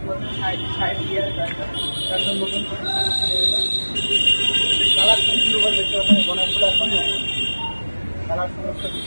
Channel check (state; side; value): inverted; both; correlation -1.00